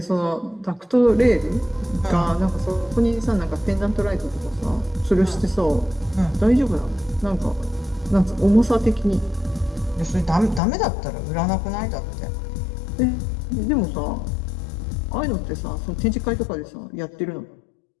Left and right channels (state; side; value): drops out; right; at 10.6 s